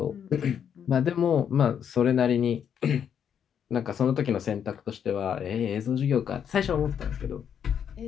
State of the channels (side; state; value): right; quieter; 8.3 dB